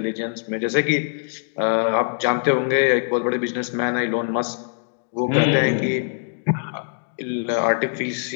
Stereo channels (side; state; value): right; silent; digital silence